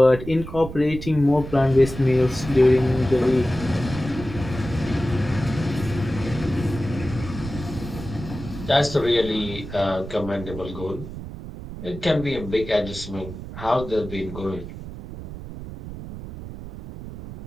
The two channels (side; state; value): right; noise; rumble, 11 dB below the sound